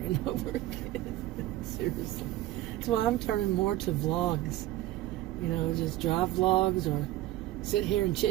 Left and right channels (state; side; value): quieter; left; 15.2 dB